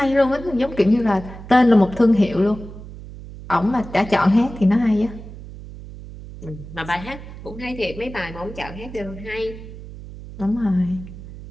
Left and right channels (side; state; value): right; noise; hum, 14 dB below the sound